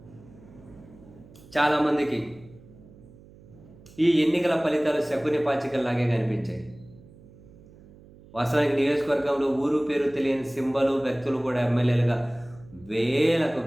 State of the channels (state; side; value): noise; right; hum, 23 dB below the sound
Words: చాలామందికి ఈ ఎన్నికల ఫలితాలు శకుని పాచికల్లాగే కనిపించాయి. వాస్తవానికి నియోజకవర్గంలో ఊరు పేరు తెలియని సింబలు, వ్యక్తులు కూడా ఎమ్మెల్యేలుగా వేల